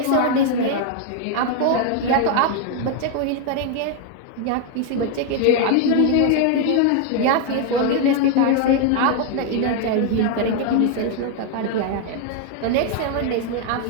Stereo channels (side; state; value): both; different; correlation 0.00